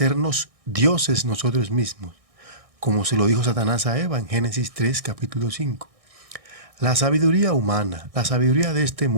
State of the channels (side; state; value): left; late; 1.6 ms